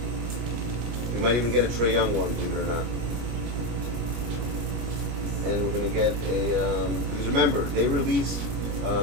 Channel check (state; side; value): late; left; 25 ms